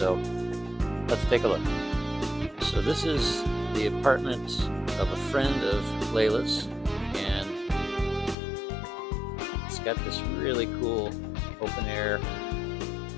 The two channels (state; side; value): drops out; right; at 8.3 s